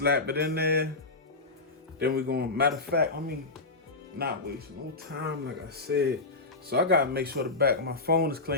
it in there. Then we're gonna, matter of fact, let me not waste no time, like I said. So I gotta make sure the back of my phone is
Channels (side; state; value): right; quieter; 3.4 dB